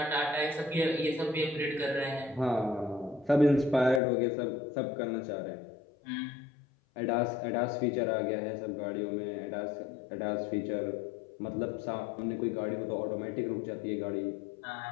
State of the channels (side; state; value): right; drops out; at 4.0 s